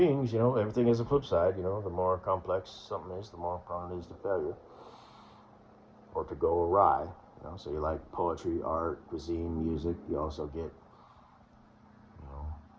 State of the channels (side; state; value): both; identical; correlation 1.00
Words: everything has a flip side, the more complex something is, the more prone it is to failure or to go awry. So you like poetry, art, cuisine, music. You also get,